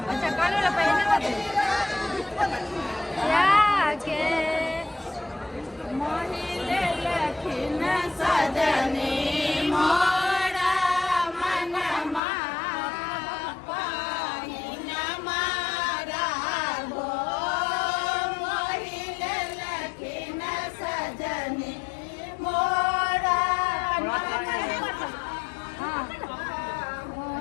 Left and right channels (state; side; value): drops out; right; at 12.2 s